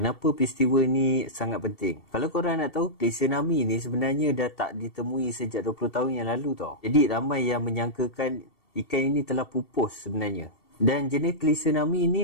peristiwa ni sangat penting? Kalau korang nak tahu, klise Nami ni sebenarnya dah tak ditemui sejak 20 tahun yang lalu tau. Jadi ramai yang menyangkakan ikan ini telah pupus sebenarnya. Dan jenis klise Nami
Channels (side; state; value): right; late; 2.7 ms